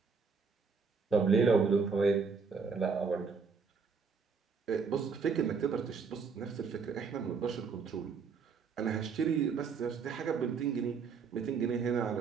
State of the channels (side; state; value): left; quieter; 5.4 dB